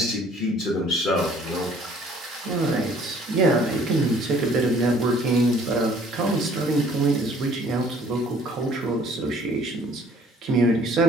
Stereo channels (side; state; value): both; normal; correlation 0.57